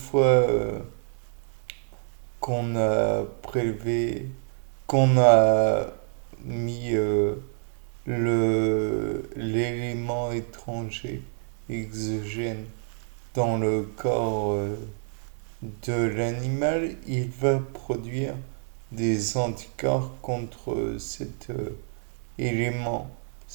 qu'on a prélevé, qu'on a mis l'élément étranger, exogène, dans le corps de l'animal, il va produire des anticorps contre cet élément,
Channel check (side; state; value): left; silent; digital silence